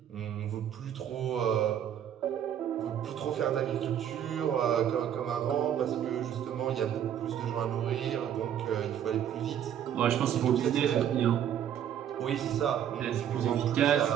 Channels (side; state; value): left; quieter; 9.7 dB